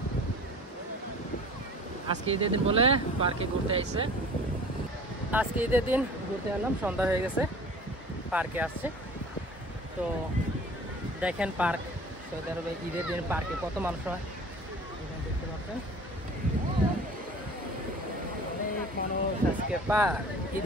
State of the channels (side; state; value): both; normal; correlation 0.44